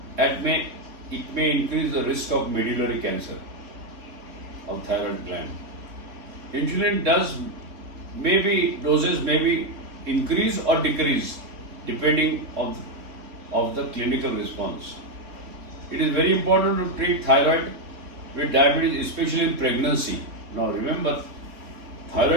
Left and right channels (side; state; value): left; late; 3.5 ms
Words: It may increase the risk of medullary cancer of thyroid gland. Insulin doses may be increase or decrease depending of the clinical response. It is very important to treat thyroid with diabetes, especially in pregnancy. Now remember,